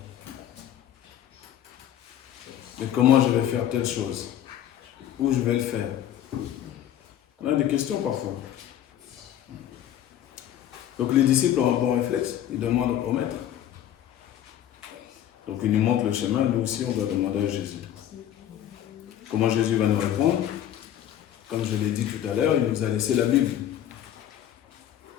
Mais comment je vais faire telle chose? Où je vais le faire? On a des questions parfois. Donc les disciples ont un bon réflexe. Ils demandent au maître. Donc il nous montre le chemin. Nous aussi, on doit demander à Jésus. Comment Jésus va nous répondre? Comme je l'ai dit tout à l'heure, il nous a laissé la Bible.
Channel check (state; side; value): quieter; right; 11.1 dB